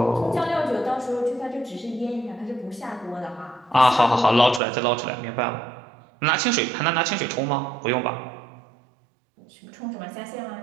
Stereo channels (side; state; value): left; drops out; at 4.6 s